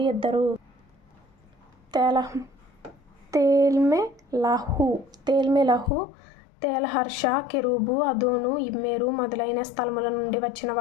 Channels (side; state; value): right; drops out; at 5.9 s